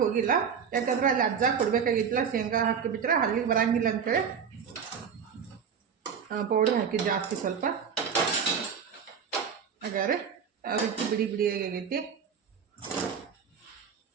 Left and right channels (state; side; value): quieter; left; 7.0 dB